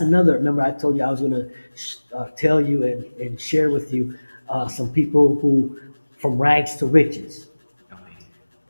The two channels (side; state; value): both; inverted; correlation -1.00